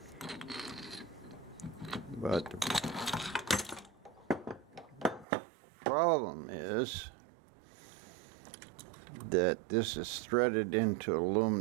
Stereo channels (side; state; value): left; drops out; at 5.2 s